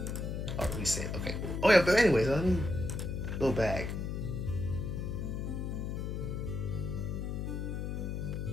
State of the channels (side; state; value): left; noise; hum, 3 dB below the sound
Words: Oh, reset. Okay, cool. Oh yeah, but anyways, let me go back.